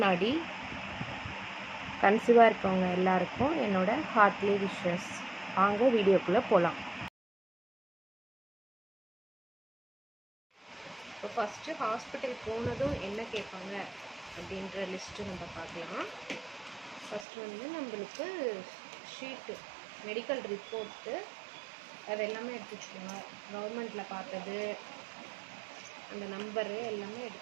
கன்சீவாக இருக்கவங்க எல்லாருக்கும் என்னோட ஹார்ட்லி விஷஸ். வாங்க வீடியோக்குள்ளே போகலாம். இப்போ ஃபஸ்ட்டு ஹாஸ்பிட்டல் போனதும் என்ன கேட்பாங்க அப்படின்ற லிஸ்ட்டு நம்ம பார்க்கலாம். ஃபஸ்ட்டு வந்து நம்மளுக்கு ஷீட்டு, மெடிக்கல் ரிப்போர்ட்டு, அது எல்லாமே எடுத்து வச்சுக்கோங்க. கவர்மெண்ட்டில் பார்த்தது, அந்த நம்பரு எல்லாமே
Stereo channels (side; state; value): left; drops out; at 17.2 s